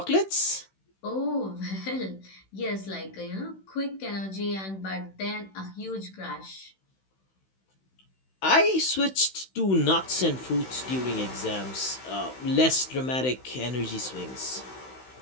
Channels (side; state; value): right; late; 16 ms